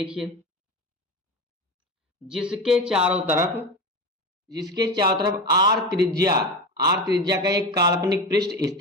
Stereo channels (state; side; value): normal; both; correlation 0.24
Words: जिसके चारों तरफ आर त्रिज्या का एक काल्पनिक पृष्ठ